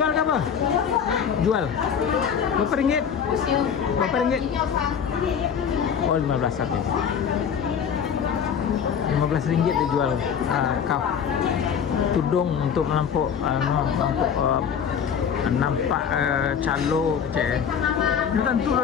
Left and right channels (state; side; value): quieter; right; 7.5 dB